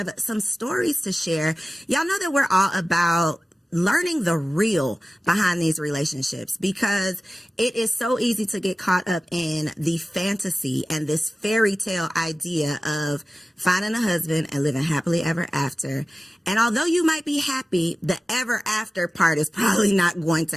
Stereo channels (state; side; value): normal; both; correlation 0.96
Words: some stories to share. Y'all know that we're all about learning the real behind these relationships because it is so easy to get caught up in the fantasy and this fairy tale idea of finding a husband and living happily ever after. And although you might be happy, the ever after part is probably not going to